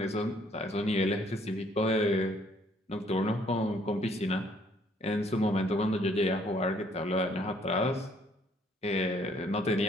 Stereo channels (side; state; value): both; normal; correlation 0.64